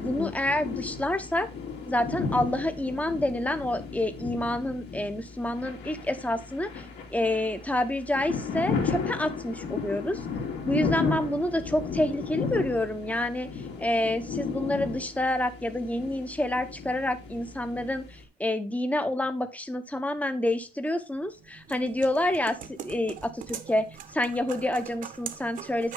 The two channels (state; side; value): normal; both; correlation 0.80